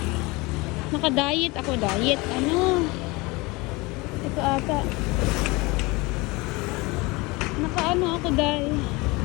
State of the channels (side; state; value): right; quieter; 24.1 dB